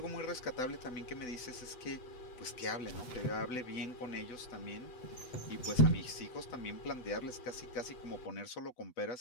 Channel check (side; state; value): right; late; 8.0 ms